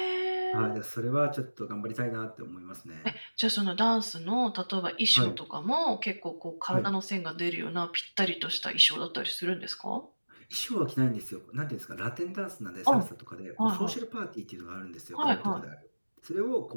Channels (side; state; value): both; inverted; correlation -1.00